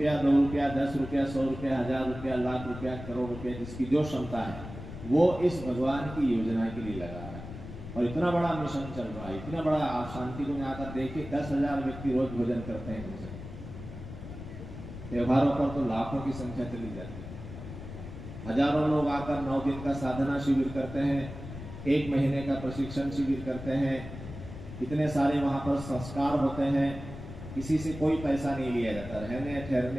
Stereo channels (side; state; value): left; noise; rumble, 11 dB below the sound